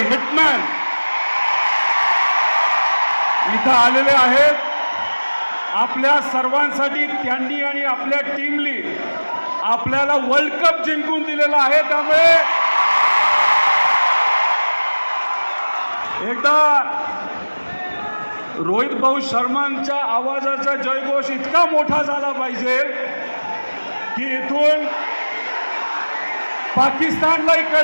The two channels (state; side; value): inverted; both; correlation -1.00